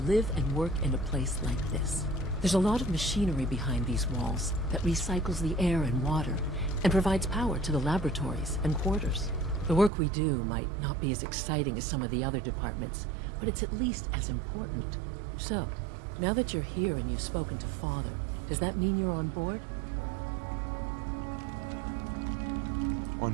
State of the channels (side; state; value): left; drops out; at 9.9 s